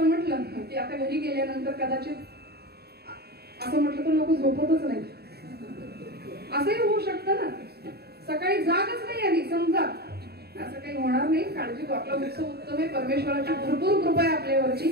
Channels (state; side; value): late; left; 0.47 ms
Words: म्हटलं की आता घरी गेल्यानंतर कदाचित असं म्हटलं तर लोक झोपतच नाही, असंही होऊ शकतं ना. सकाळी जागच नाही आली समजा, असं काही होणार नाही. काळजी करू, आपला उत्सव उत्तम आहे, परमेश्वराची भरपूर कृपा आहे आपल्यावरची,